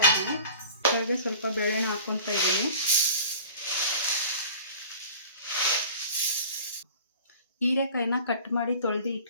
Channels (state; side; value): inverted; both; correlation -0.44